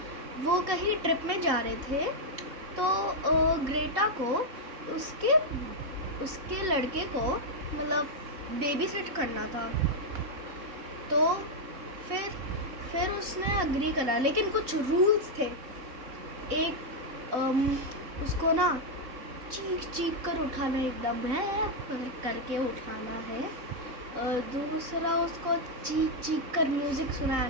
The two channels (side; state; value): left; late; 3.9 ms